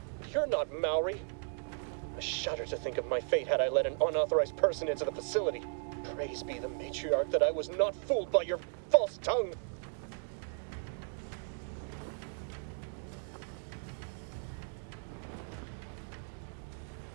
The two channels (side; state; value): left; silent; 54 dB below the other